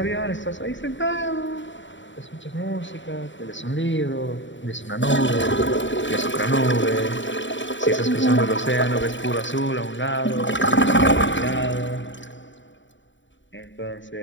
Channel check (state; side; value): late; right; 0.54 ms